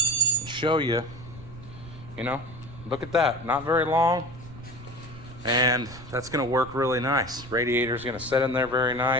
show you. You know, look at that. Not very long. And that's going to work really nice. Radiator is going to set in there very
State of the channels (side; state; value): right; noise; rumble, 16 dB below the sound